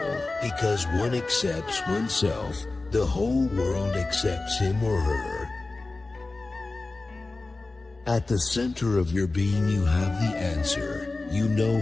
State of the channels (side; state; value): right; quieter; 3.3 dB